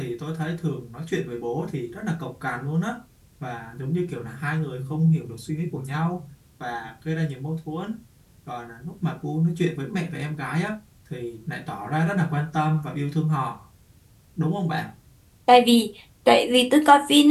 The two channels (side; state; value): both; identical; correlation 1.00